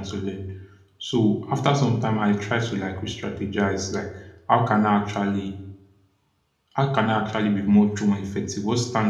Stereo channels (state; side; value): identical; both; correlation 1.00